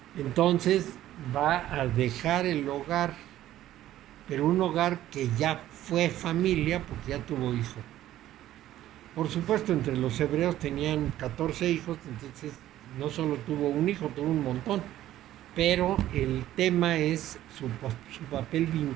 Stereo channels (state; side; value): quieter; left; 13.4 dB